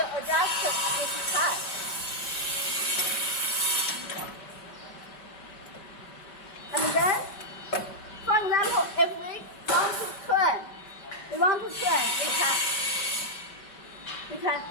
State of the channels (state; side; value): late; right; 5.2 ms